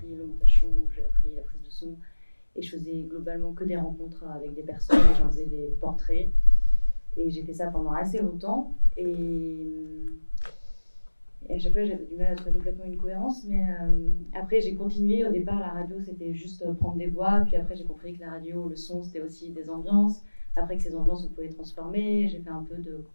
le montage son, où j'ai appris la prise de son, et je faisais globalement que des rencontres avec des personnes, et j'en faisais des portraits, et j'ai fait ça pendant assez longtemps, et à chaque fois j'avais du mal à trouver complètement une cohérence, mais après j'ai continué. Au départ la radio c'était juste prendre des voix, puis après j'ai compris que la radio, le son c'était aussi des ambiances. Après que ces ambiances, on pouvait transformer, j'ai fait un peu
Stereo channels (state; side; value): inverted; both; correlation -1.00